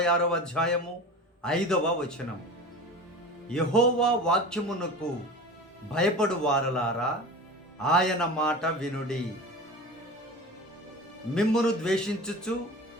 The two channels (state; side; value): normal; both; correlation 0.33